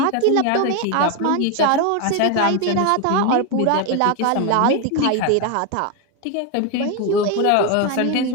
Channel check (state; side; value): different; both; correlation 0.02